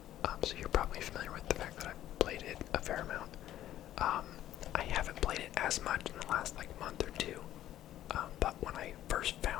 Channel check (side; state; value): right; quieter; 12.7 dB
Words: so you're probably familiar with the fact that I've played it a fair amount. I haven't played it as much in the last month or two, but when I first